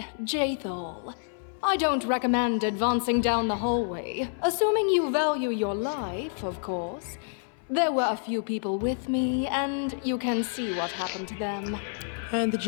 Jaethal. I don't recommend advancing down the hallway, assuming you value your life, of course. There were a few people with me, and you can see what happened to them. And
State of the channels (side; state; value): right; silent; 59 dB below the other